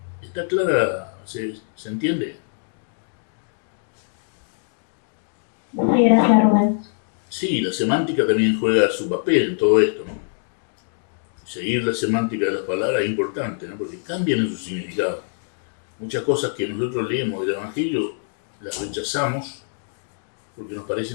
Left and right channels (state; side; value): silent; right; digital silence